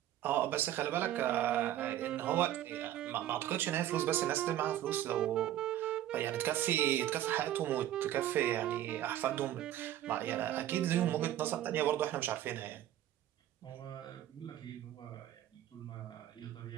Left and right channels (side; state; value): left; quieter; 12.5 dB